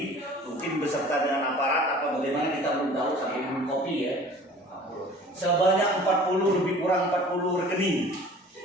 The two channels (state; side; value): normal; both; correlation 0.46